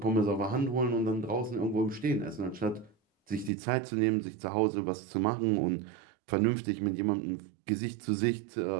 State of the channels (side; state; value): left; drops out; at 3.5 s